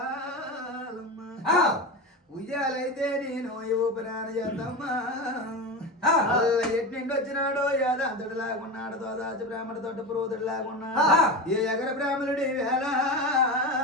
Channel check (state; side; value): normal; both; correlation 0.23